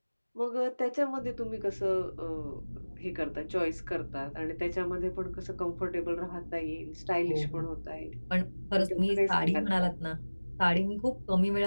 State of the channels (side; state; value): both; inverted; correlation -1.00